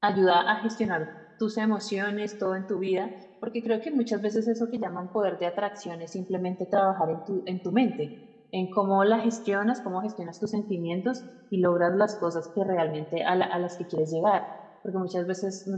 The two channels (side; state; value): both; identical; correlation 1.00